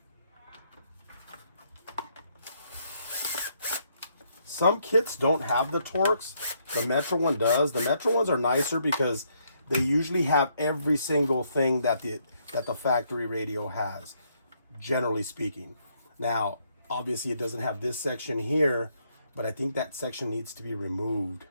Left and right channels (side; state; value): both; inverted; correlation -0.73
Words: Some kits don't have the Torx. The Metra one does. The Metra ones are nicer because they usually have every single thing that the factory radio has, generally speaking. Now, obviously it doesn't have this section here, but I think that section needs to be removed,